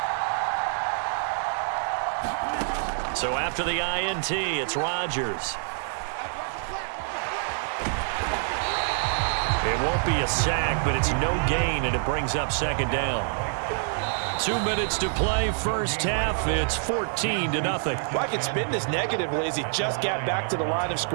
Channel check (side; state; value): left; silent; digital silence